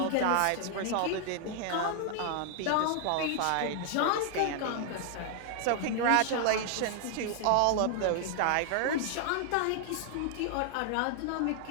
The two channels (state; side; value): different; both; correlation 0.00